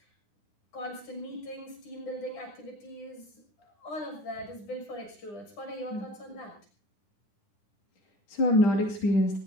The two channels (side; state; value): right; late; 9.9 ms